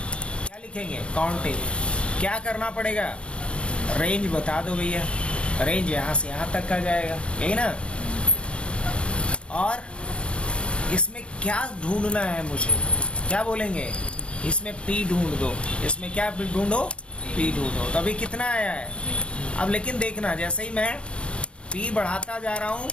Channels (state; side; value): late; right; 0.058 ms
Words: लिखेंगे? Count F. क्या करना पड़ेगा? रेंज बता दो भैया। रेंज यहाँ से यहाँ तक का जाएगा, यही ना? और इसमें क्या ढूंढना है मुझे? क्या बोलेंगे? इसमें पी ढूंढ दो। इसमें क्या ढूंढो? पी ढूंढो। तो अभी कितना आया है? अब लेकिन देखना, जैसे ही मैं पी बढ़ाता जा रहा हूँ,